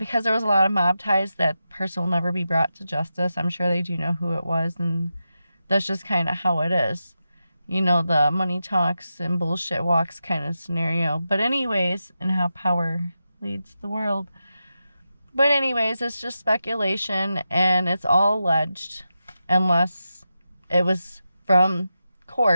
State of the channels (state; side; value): inverted; both; correlation -0.90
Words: there was a lot of mob ties, that person will never be brought to justice. I'm sure they do know who it was, and that's just kind of how it is. The money talks and bullshit walks kind of scenario. But anyways, and how power leads the world. But anyways, it's just speculation, and it's all alleged, unless it was from